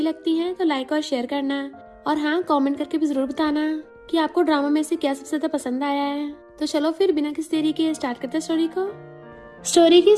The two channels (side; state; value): both; identical; correlation 1.00